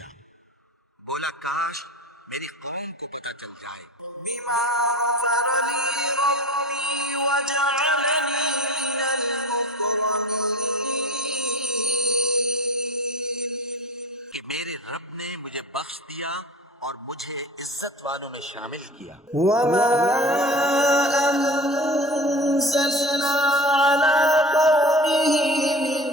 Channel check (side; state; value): both; normal; correlation 0.36